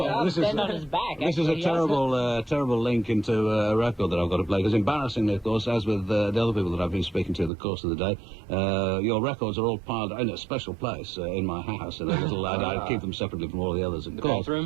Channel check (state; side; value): drops out; left; at 7.5 s